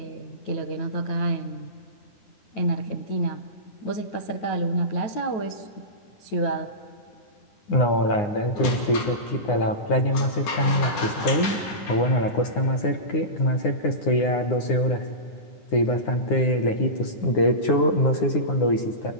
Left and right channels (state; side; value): late; right; 9.9 ms